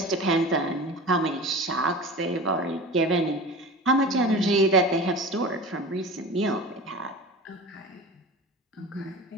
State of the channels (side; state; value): both; normal; correlation 0.34